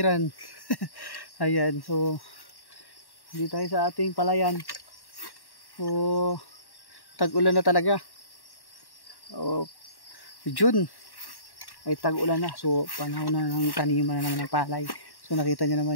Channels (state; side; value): late; right; 1.1 ms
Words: Ayan, so dito tayo sa ating palayan. So tag-ulan na talaga. June ay tag-ulan na, so panahon na ng taniman na naman ng palay. So nakita nyo